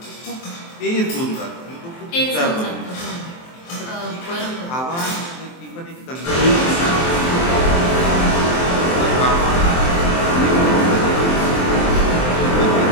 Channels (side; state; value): right; late; 23 ms